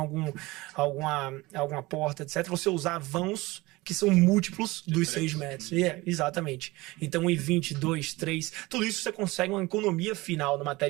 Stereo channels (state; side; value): quieter; left; 21.2 dB